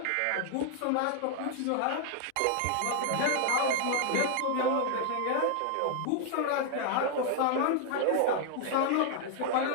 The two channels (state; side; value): different; both; correlation 0.00